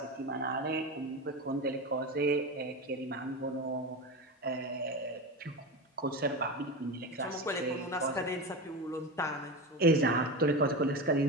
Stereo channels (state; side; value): normal; both; correlation 0.22